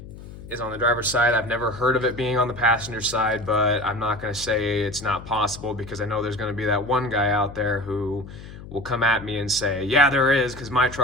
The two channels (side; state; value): left; noise; hum, 15 dB below the sound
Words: is on the driver's side. I've never heard of it being on the passenger side, but I'm not going to say it's not possible, because I know there's going to be that one guy out there who will come at me and say, yeah, there is, because my